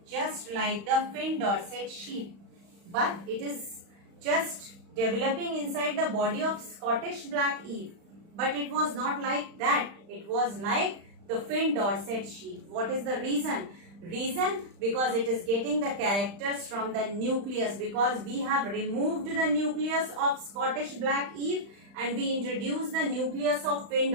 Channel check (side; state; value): left; late; 35 ms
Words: fin Dorset sheep, but it is just developing inside the body of Scottish black eve. But it was not like that. It was like the fin Dorset sheep. What is the reason? Reason, because it is getting the characters from the nucleus, because we have removed the nucleus of Scottish black eve and we introduced the nucleus of fin